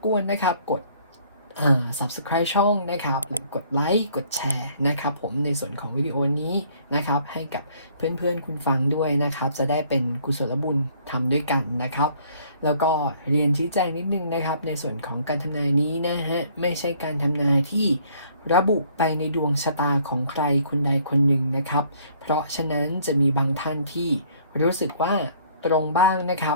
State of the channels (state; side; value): inverted; both; correlation -0.60